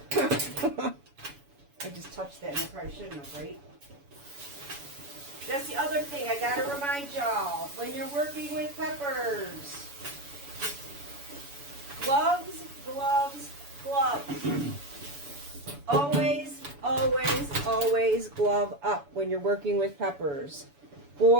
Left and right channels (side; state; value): left; late; 7.0 ms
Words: I just touched that and I probably shouldn't have, right? That's the other thing I gotta remind y'all. When you're working with peppers. Gloves, gloves, gloves. Always, always, always glove up when you're working with peppers.